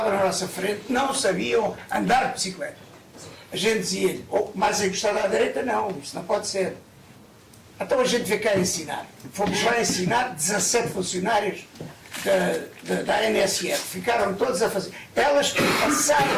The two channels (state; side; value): identical; both; correlation 1.00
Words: na nossa frente não sabiam andar de bicicleta. A gente dizia-lhe, mais encostado à direita, não, isso não pode ser. Então a gente veio cá ensinar. Fomos lá ensinar 17 funcionários da NSF. Ficaram todos a fazer. Elas